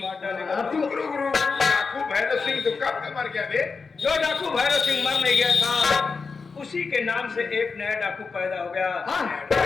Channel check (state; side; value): quieter; right; 4.8 dB